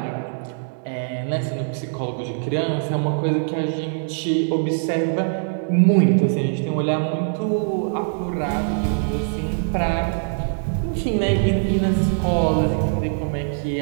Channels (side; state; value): left; silent; digital silence